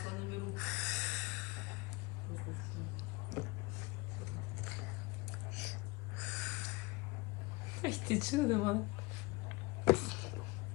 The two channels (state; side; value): quieter; right; 24.3 dB